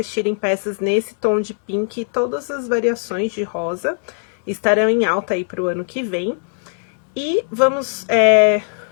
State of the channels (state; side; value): silent; right; 66 dB below the other